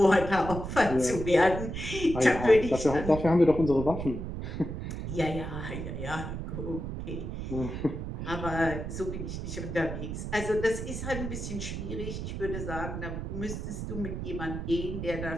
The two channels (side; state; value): right; noise; rumble, 6 dB below the sound